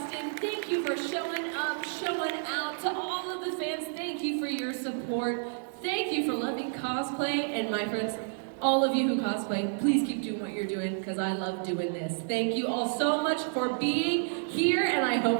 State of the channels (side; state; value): left; silent; digital silence